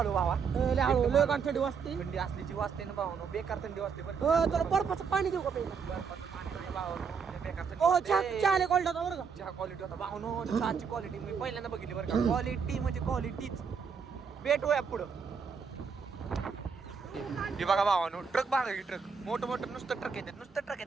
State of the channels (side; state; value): left; quieter; 6.0 dB